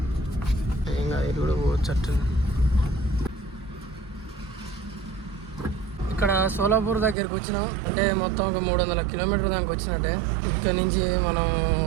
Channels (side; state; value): left; drops out; at 7.2 s